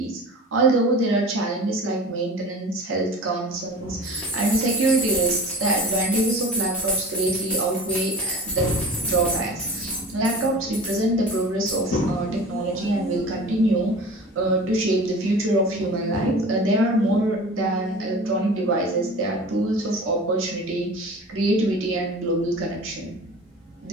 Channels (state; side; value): normal; both; correlation 0.38